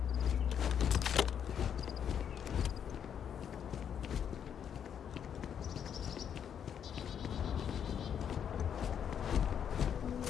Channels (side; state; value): right; quieter; 8.4 dB